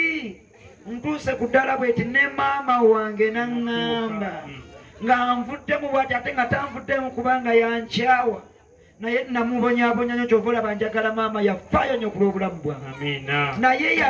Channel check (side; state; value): both; identical; correlation 1.00